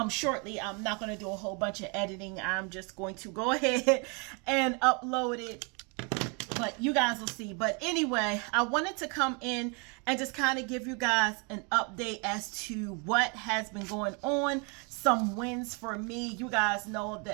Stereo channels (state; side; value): quieter; left; 33.6 dB